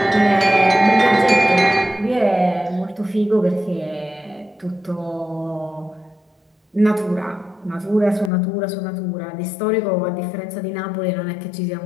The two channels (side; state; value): right; drops out; at 8.3 s